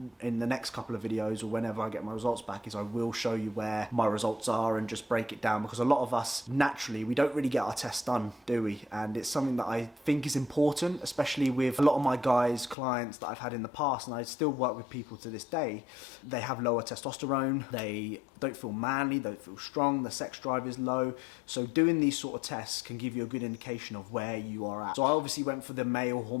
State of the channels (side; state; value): right; drops out; at 12.8 s